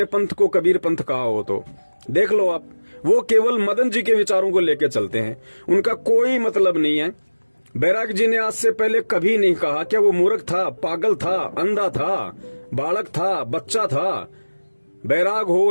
पंथ को कबीर पंथ कहा हो तो देख लो आप। वो केवल मदन जी के विचारों को लेकर चलते हैं, उनका कोई मतलब नहीं है। बैराग जी ने आज से पहले कभी नहीं कहा क्या वो मूर्ख था, पागल था, अंधा था, बालक था, बच्चा था। बैराग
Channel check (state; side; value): inverted; both; correlation -1.00